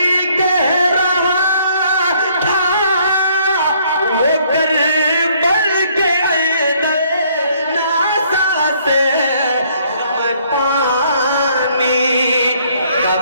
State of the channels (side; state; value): both; inverted; correlation -0.65